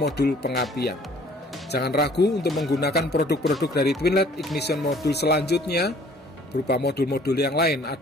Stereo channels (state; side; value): normal; both; correlation 0.55